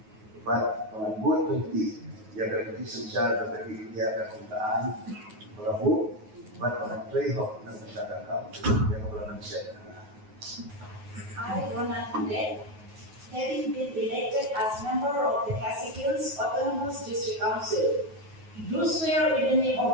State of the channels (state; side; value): late; left; 9.4 ms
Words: bangan buat kunti, yang berarti synshar bagi dia kekuntaan, berabu, bangan prehok dan masyarakat yang berlaku siapa. I, having been elected as member of the KHADC Khmih District Council, do swear in the name